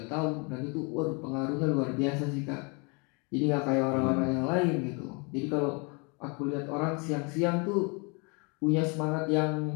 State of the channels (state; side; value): quieter; right; 32.2 dB